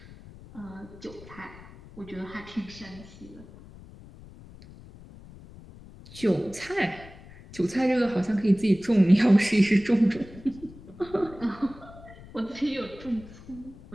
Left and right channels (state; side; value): noise; left; rumble, 19 dB below the sound